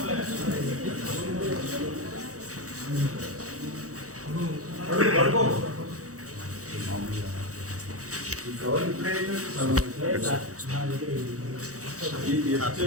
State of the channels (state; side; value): late; left; 0.65 ms